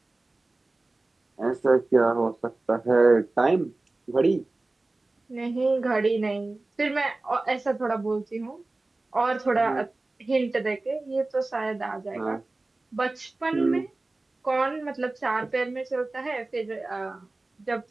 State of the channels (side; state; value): left; quieter; 3.1 dB